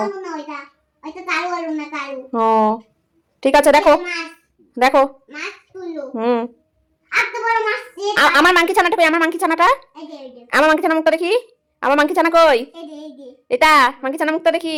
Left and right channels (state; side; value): identical; both; correlation 1.00